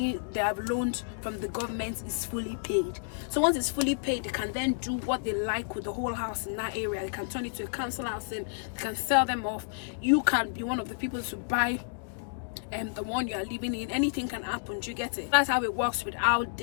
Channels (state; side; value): silent; right; digital silence